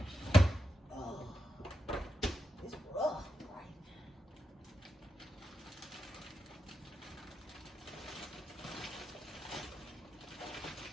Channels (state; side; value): normal; both; correlation 0.87